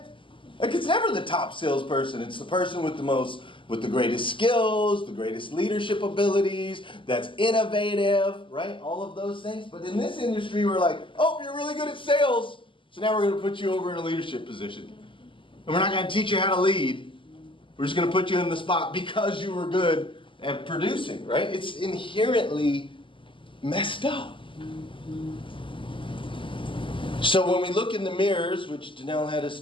Like, it's never the top salesperson. It's the person with the greatest skills, the greatest leadership abilities, that's innovative, right? All of those things. But in this industry, we're like, oh, you're really good at sales, so now we're going to put you over in a leadership position. And we're not going to teach you how to lead. We're just going to put you in the spot because you were good at producing, right? It's inherently messed up. So when we look in the mirrors, which Danelle had us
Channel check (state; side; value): late; right; 0.25 ms